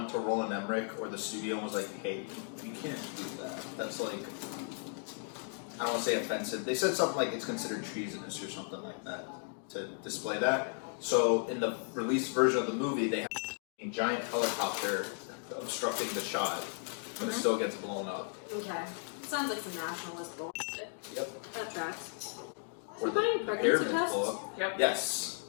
to Roland Emmerich or the studio and was like, hey, you can't do that. That's, like, I don't want to say offensive. They said something like it's considered treasonous or something like that to display that. So, in the released version of the movie, they have a giant helicopter obstructing the shot, but it still gets blown up. Okay. Sounds like some nationalist bullshit. Yep. That tracks. Or Is he buying pregnancy pyramids tests? blow up. Yep. Yes.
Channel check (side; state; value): right; silent; 54 dB below the other